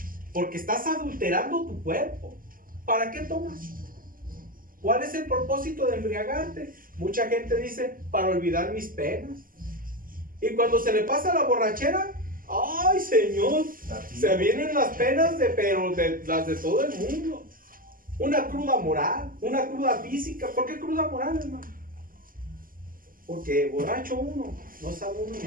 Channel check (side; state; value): left; late; 0.41 ms